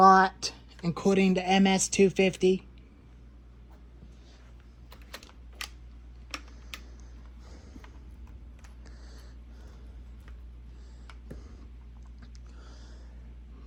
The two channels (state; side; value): identical; both; correlation 1.00